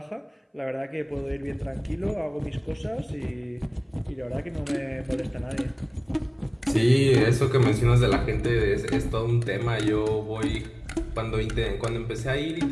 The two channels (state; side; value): identical; both; correlation 1.00